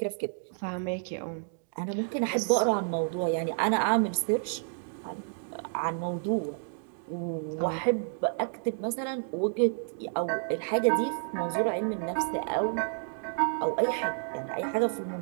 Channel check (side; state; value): left; silent; 58 dB below the other